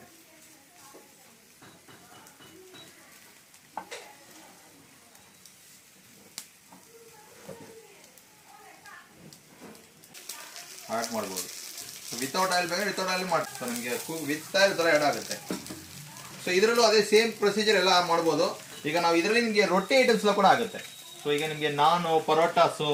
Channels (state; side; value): identical; both; correlation 1.00